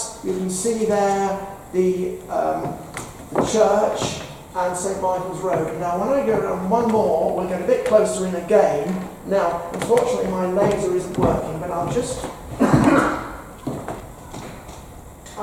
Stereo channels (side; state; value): both; identical; correlation 1.00